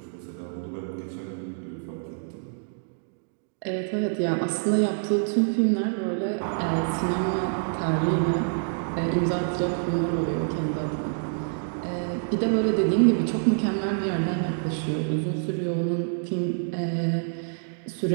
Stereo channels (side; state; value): left; silent; digital silence